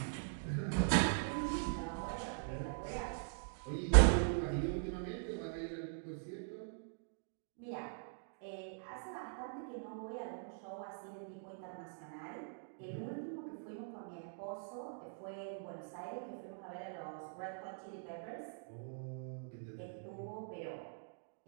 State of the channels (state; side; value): silent; left; digital silence